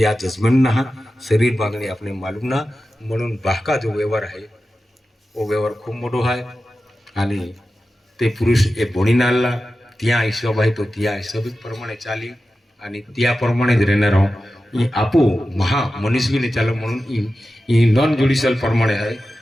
आ जजमेंट ना शरीर बांधणे अपने मालूम ना म्हणून बाका जो व्यवहार आहे वो व्यवहार खूप मोठो आहे आणि ते पुरुष ए भोणी नाला त्या हिशोब आहे तो त्या हिशोबिक प्रमाणे चाली आणि त्याप्रमाणे જ રહેનાર હું એ આપો મહા મનસ્વીને ચાલો म्हणून ई नॉन ज्युडिशियल प्रमाणे आहे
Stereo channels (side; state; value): both; normal; correlation 0.93